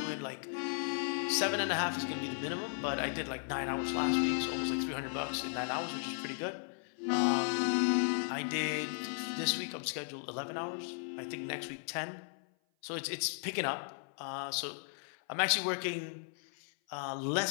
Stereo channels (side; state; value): right; silent; 54 dB below the other